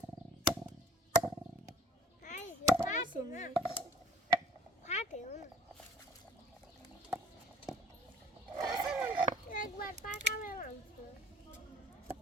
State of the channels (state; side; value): normal; both; correlation 0.51